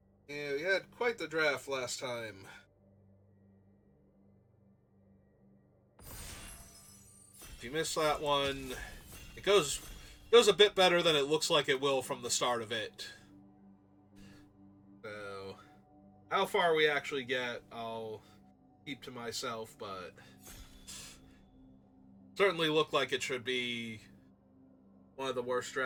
Yeah, we had quite the draft last time. If you missed that one, it goes a bit better than it looks like it will from the start of it. So, how far we actually get, I'll keep to myself, but certainly looked like it should be one of the worst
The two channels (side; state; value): both; identical; correlation 1.00